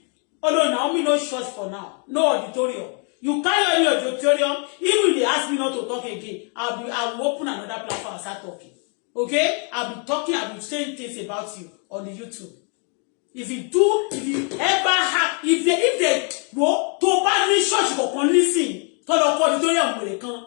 Although Naomi no church for now, no auditorium. You can't any auditorium. Even if they ask me not to talk again, I will open another platform and start talking. Okay? I'll be talking. I'll be saying things about you on the YouTube. If you ever have, if they go to bad church for listen, to the auditorium where they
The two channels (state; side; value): quieter; right; 39.6 dB